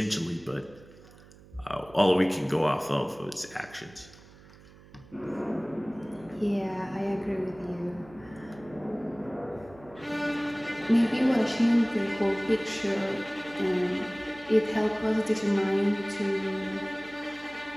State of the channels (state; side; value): noise; right; hum, 22 dB below the sound